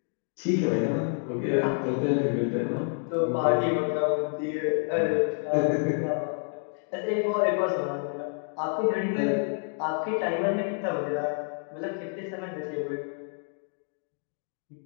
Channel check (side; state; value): right; silent; 57 dB below the other